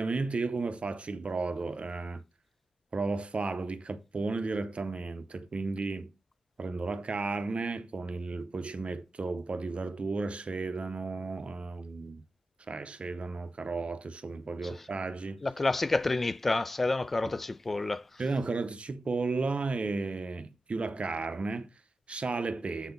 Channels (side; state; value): both; normal; correlation 0.91